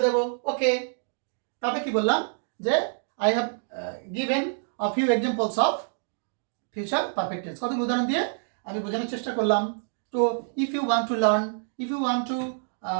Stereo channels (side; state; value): left; silent; digital silence